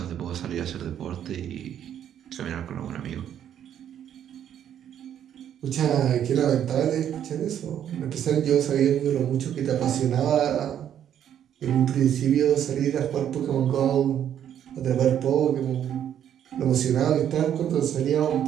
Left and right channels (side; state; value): left; quieter; 9.9 dB